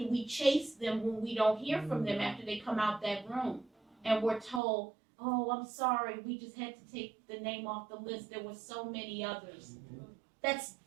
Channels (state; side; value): drops out; left; at 4.6 s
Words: we chase them when we don't hear from them after they come out that room, and we're told, oh, I'm sorry, we just had to take the name off the list, there were so many others. That's